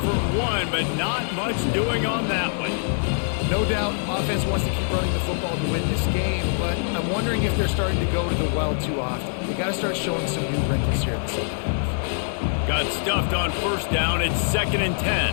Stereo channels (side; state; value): right; silent; digital silence